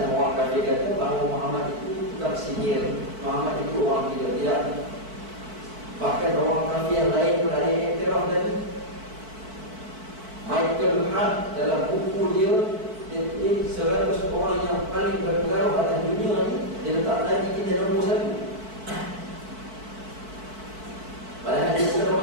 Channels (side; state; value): left; late; 4.5 ms